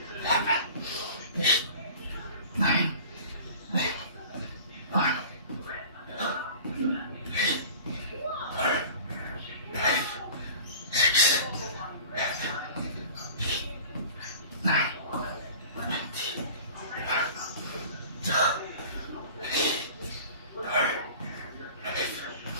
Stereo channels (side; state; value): both; inverted; correlation -0.41